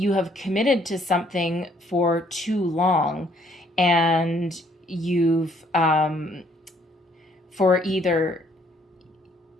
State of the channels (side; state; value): both; normal; correlation 0.65